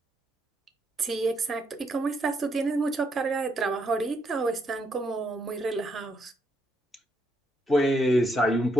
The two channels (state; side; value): normal; both; correlation 0.77